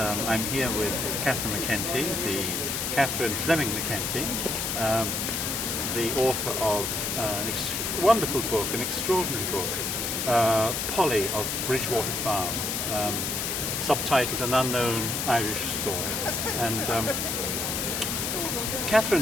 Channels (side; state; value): left; noise; hiss, 1 dB below the sound